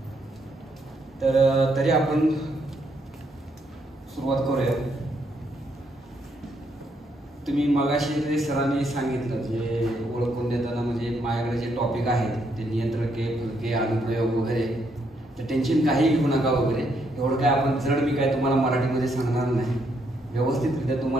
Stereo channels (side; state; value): both; normal; correlation 0.75